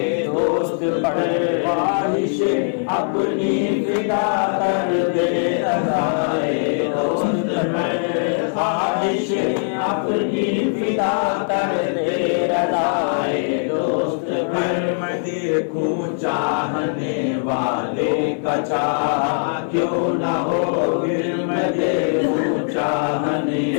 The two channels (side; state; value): right; silent; 56 dB below the other